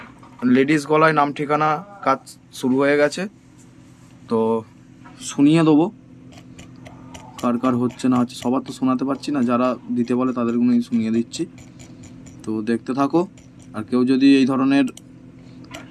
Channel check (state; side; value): identical; both; correlation 1.00